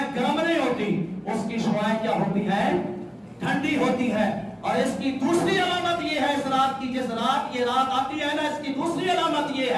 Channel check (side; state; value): both; identical; correlation 1.00